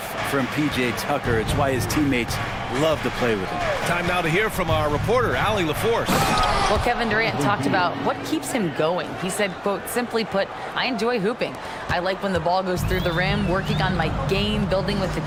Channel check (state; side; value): identical; both; correlation 1.00